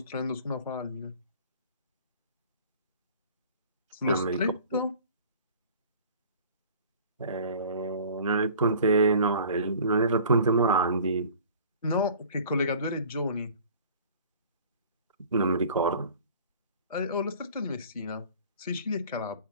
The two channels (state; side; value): inverted; both; correlation -0.47